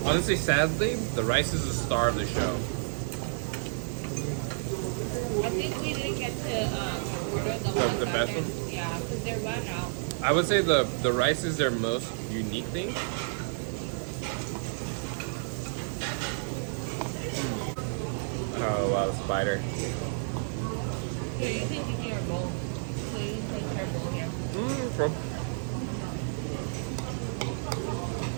Honestly, sadly, the rice is the star of the show. I think we didn't get to order the ones The that best they're- one? Yeah, because they're run out. I would say the rice is their most unique thing. Oh wow, spider. Here, you can give me your bowl. So you can take her bowl here. From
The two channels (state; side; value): silent; left; digital silence